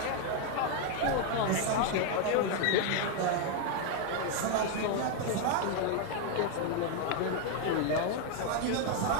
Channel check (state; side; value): different; both; correlation 0.01